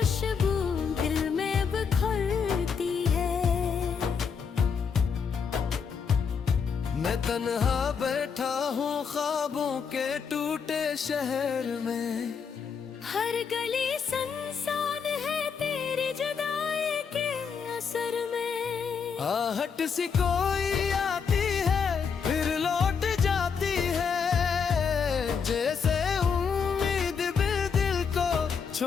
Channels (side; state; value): right; quieter; 6.2 dB